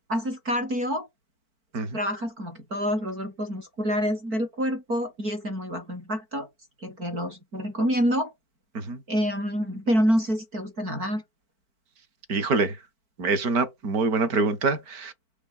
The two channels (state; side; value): late; left; 4.5 ms